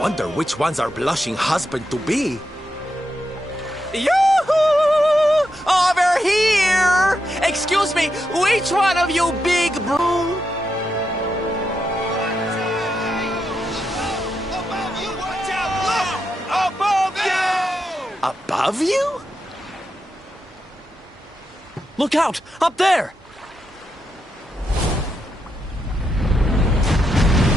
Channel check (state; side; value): normal; both; correlation 0.84